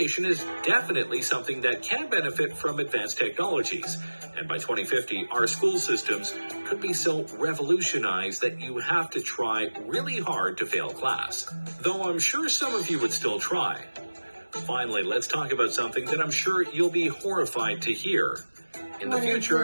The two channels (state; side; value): inverted; both; correlation -1.00